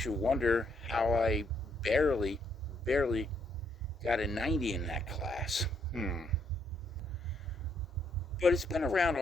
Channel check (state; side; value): normal; both; correlation 0.73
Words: you wonder how I barely got a 90 in that class. But it's been around